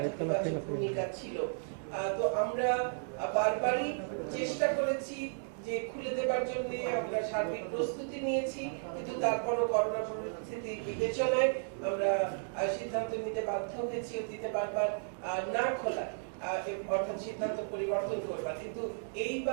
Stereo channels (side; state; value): left; silent; digital silence